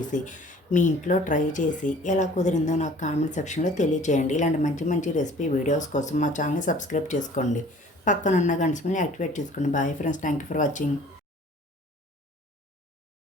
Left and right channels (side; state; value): both; normal; correlation 0.50